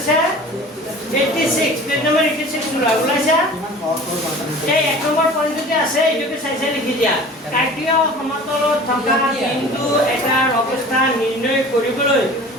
86 পেজ নম্বৰ 86 ওলাইছা এই এক নম্বৰ পইণ্টতে আছে এইটোকে চাই লিখি দিয়া কাৰ্টেসীয় সমতলত থকা বিন্দু এটাৰ অৱস্থা নিৰ্ণয় কৰিবলৈ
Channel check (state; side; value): normal; both; correlation 0.42